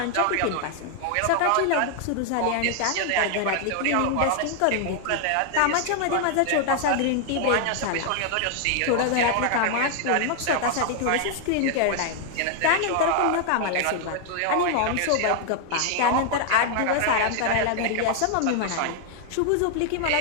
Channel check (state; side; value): different; both; correlation 0.00